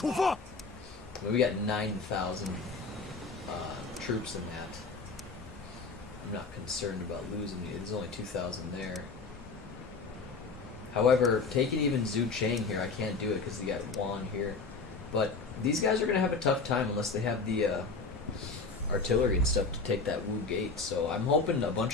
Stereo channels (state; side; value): quieter; right; 4.3 dB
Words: 发。 We got 9,000 troops in that. I'm not concerned about losing it. There's only 2,000 there. However, taking even Zhu Cheng here, I can't do it because they got Wan here. But these guys are going to have a tough time unless they have the artillery and stuff to take that Wu gate. So I'm hoping a